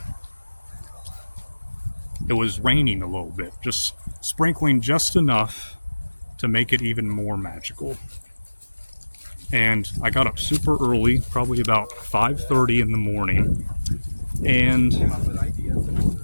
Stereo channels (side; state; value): both; inverted; correlation -1.00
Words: it was raining a little bit, just sprinkling just enough to make it even more magical. And I got up super early, probably about 5:30 in the morning, and